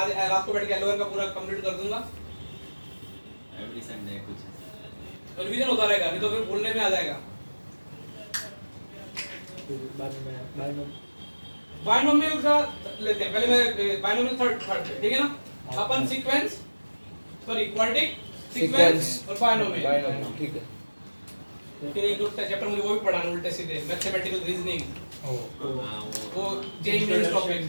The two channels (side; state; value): both; inverted; correlation -1.00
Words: रात को बैठ के एलोवेर का पूरा कंप्लीट कर दूंगा। एवरी संडे कुछ रिवीजन होता रहेगा, नहीं तो फिर भूलने में आ जाएगा। बायनोमियल का लेते हैं पहले, मैं बायनोमियल थर्ड ठीक है ना। अपन सीक्वेंस सॉरी क्वाड्रेटिक सीक्वेंस और बायनोमियल ठीक है। फिर एक दो चैप्टर मुझे वो भी पढ़ाना उल्टे सीधे, मैथमेटिकल रीजनिंग, वो जेई मेंस टॉपिक